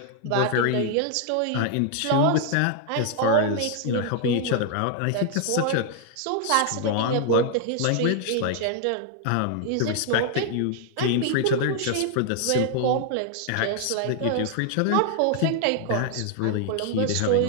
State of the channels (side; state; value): both; different; correlation 0.00